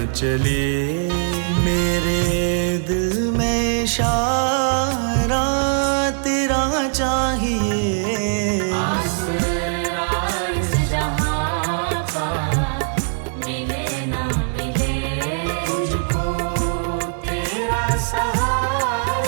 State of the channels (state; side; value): silent; left; digital silence